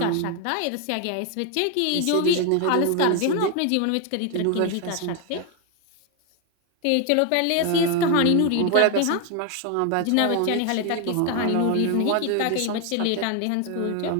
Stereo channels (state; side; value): different; both; correlation 0.01